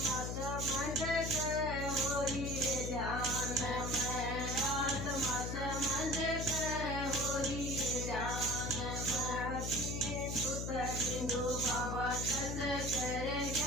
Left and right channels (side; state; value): left; noise; hum, 3 dB below the sound